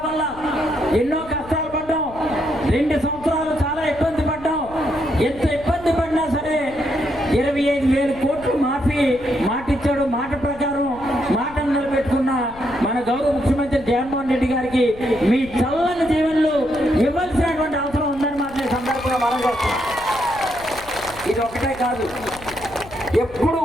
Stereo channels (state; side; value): noise; left; rumble, 18 dB below the sound